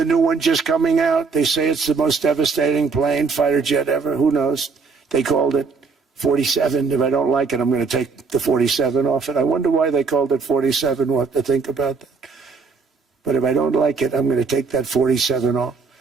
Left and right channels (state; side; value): quieter; left; 4.9 dB